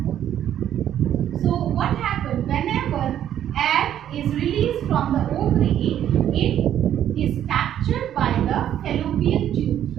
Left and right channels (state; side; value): quieter; left; 10.7 dB